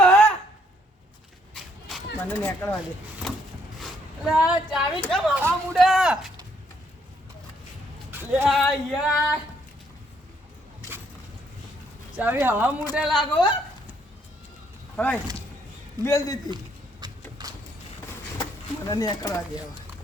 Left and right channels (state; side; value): normal; both; correlation 0.70